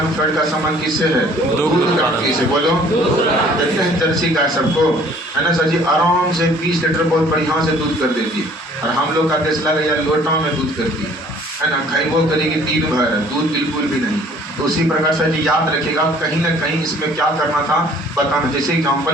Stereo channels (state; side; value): normal; both; correlation 0.55